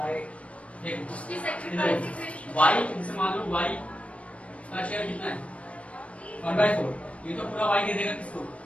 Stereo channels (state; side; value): late; right; 0.063 ms